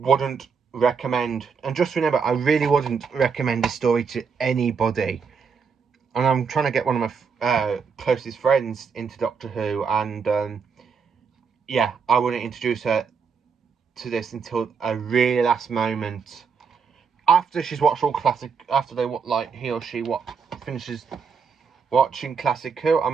recommend, and just remember, I really wouldn't recommend this story to anybody. And I'm trying to get one of my closest friends into Doctor Who, and yeah, I wouldn't introduce her to this until a really last moment, after she's watched all classic, after he or she finishes watching Classic Who. I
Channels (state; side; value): quieter; left; 5.9 dB